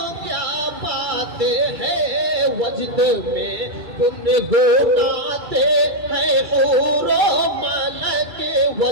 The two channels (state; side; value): late; left; 2.3 ms